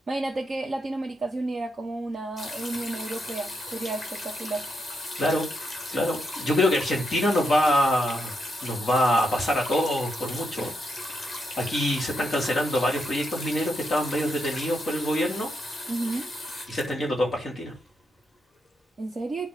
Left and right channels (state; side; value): normal; both; correlation 0.81